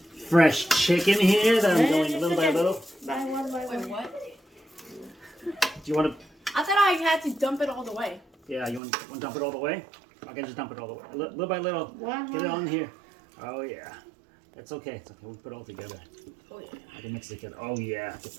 fresh chicken here that I'm going little by little. By one. Wait, what? Do you want to? I thought I had to dump it all the way. Yeah, you want to dump it all the way? I can just dump it all the way. Little by little. Get it on here. Oh, yeah. It's okay. It's okay. We'll put it all together. Oh, yeah. I can mix it together. Oh, yeah. Get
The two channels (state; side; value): drops out; left; at 8.8 s